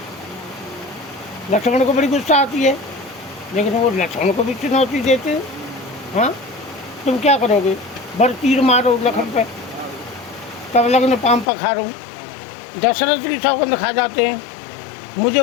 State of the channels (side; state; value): right; drops out; at 11.5 s